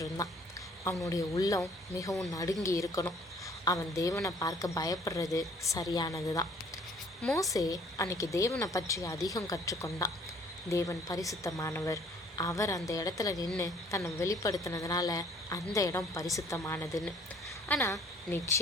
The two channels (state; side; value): normal; both; correlation 0.57